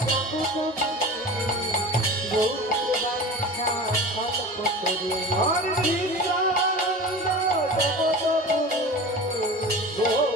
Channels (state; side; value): normal; both; correlation 0.34